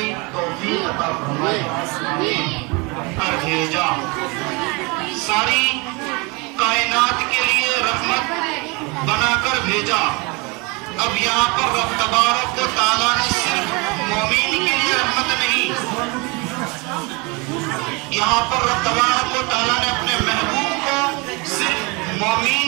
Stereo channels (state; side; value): quieter; left; 28.3 dB